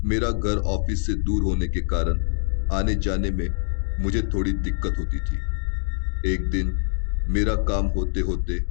मेरा घर ऑफिस से दूर होने के कारण आने जाने में मुझे थोड़ी दिक्कत होती थी। एक दिन मेरा काम होते होते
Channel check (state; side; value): silent; right; digital silence